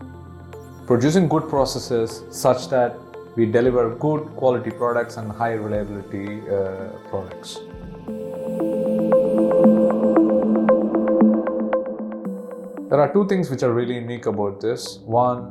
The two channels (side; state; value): both; identical; correlation 1.00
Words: producing good processes such that we deliver good quality products and high reliability products. There are two things which are really unique about this.